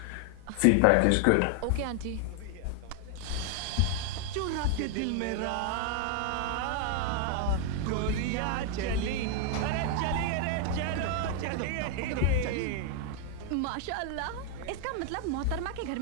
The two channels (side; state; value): both; different; correlation 0.00